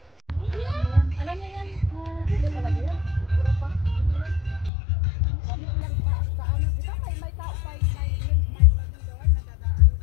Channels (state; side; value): drops out; right; at 4.7 s